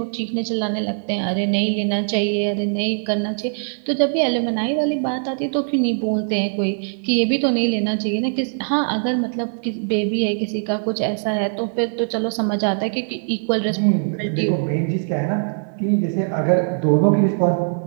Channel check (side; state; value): left; silent; digital silence